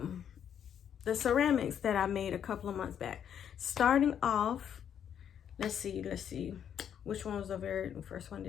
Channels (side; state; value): right; quieter; 8.9 dB